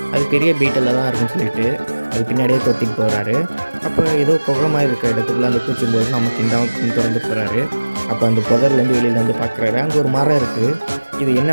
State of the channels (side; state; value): both; inverted; correlation -1.00